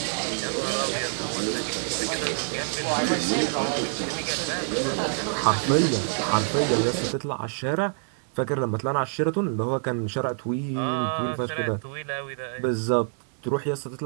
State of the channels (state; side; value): silent; left; digital silence